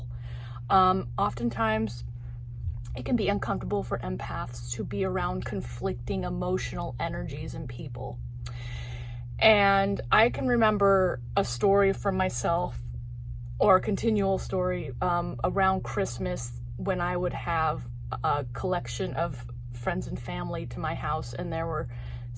Oftentimes, it can be uncomfortable for empaths to be around conflicting emotional energies in people. And I can remember a story from myself, or a continual story around Christmas, when I would have a collection of friends and family to my house, and there were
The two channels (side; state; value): both; identical; correlation 1.00